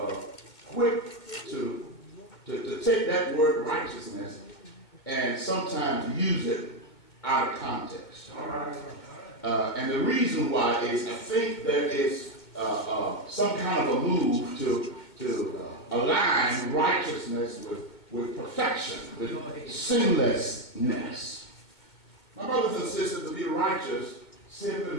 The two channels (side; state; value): right; late; 2.1 ms